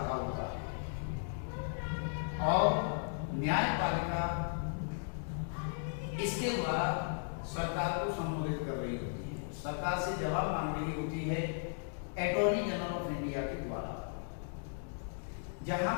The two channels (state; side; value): silent; right; digital silence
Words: होता है और न्यायपालिका इसके द्वारा सरकार को संबोधित कर रही होती है, सरकार से जवाब मांग रही होती है अटॉर्नी जनरल ऑफ इंडिया के द्वारा। जहां